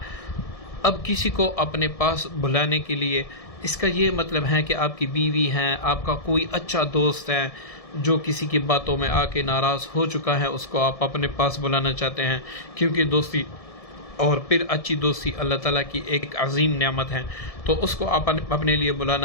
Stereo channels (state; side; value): late; right; 1.7 ms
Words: اب کسی کو اپنے پاس بلانے کے لیے، اس کا یہ مطلب ہے کہ آپ کی بیوی ہیں، آپ کا کوئی اچھا دوست ہے جو کسی کی باتوں میں آ کے ناراض ہو چکا ہے، اس کو آپ اپنے پاس بلانا چاہتے ہیں، کیونکہ دوستی اور پھر اچھی دوستی اللہ تعالیٰ کی ایک عظیم نعمت ہے، تو اس کو آپ اپنے لیے